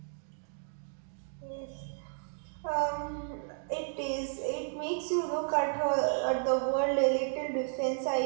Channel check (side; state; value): left; silent; digital silence